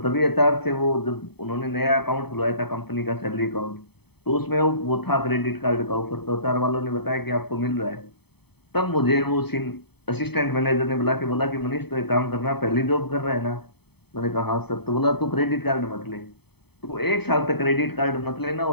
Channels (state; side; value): late; right; 0.97 ms